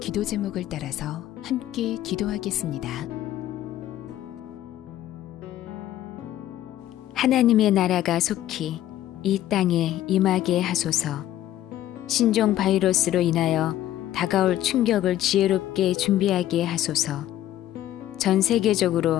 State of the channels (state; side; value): quieter; right; 13.1 dB